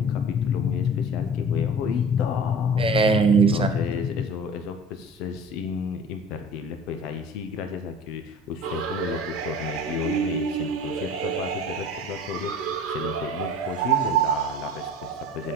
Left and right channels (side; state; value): both; normal; correlation 0.42